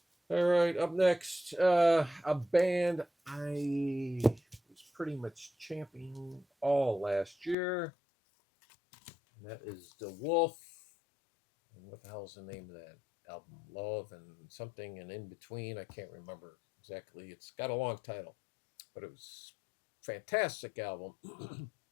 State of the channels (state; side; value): drops out; right; at 7.6 s